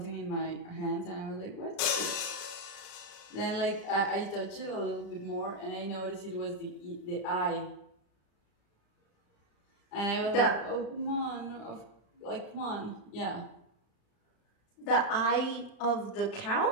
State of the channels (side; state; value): right; late; 35 ms